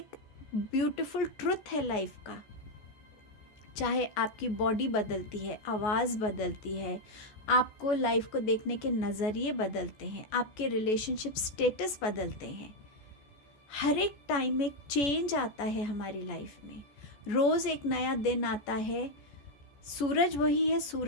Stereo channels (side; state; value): right; late; 14 ms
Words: ब्यूटीफुल ट्रुथ है लाइफ का. चाहे आपकी बॉडी बदलती है, आवाज़ बदलती है, आपको लाइफ को देखने के नज़रिए बदलते हैं, आपके रिलेशनशिप स्टेटस बदलते हैं. हर एक टाइम में एक चेंज आता है हमारी लाइफ में. रोज़ एक नया दिन आता है. सूरज वही है,